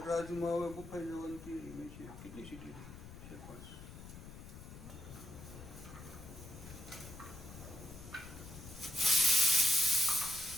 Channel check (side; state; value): left; noise; rumble, 13 dB below the sound